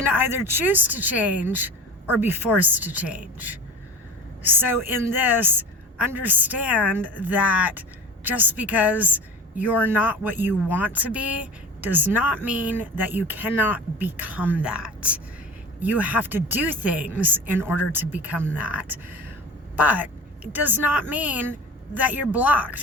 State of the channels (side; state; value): both; normal; correlation 0.36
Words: either choose to change or be forced to change. So in this, understand that just because you're not what you want to be does not mean that you cannot become that. You have to do things in order to become that. But it does not mean that you're